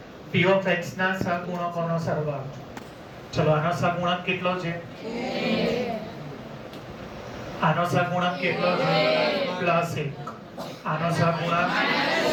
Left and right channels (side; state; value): both; identical; correlation 1.00